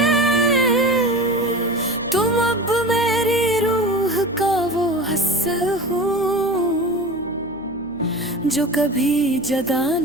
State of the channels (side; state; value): left; noise; hum, 21 dB below the sound